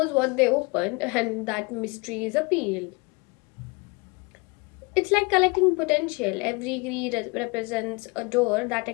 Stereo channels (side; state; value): right; quieter; 28.1 dB